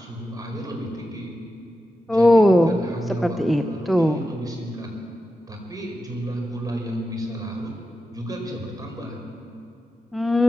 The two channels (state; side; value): normal; both; correlation 0.90